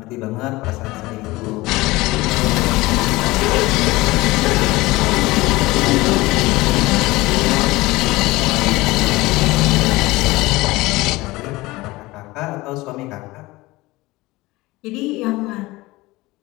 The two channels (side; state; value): right; quieter; 20.4 dB